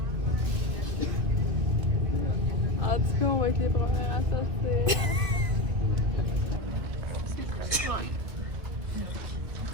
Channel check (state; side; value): late; left; 2.7 ms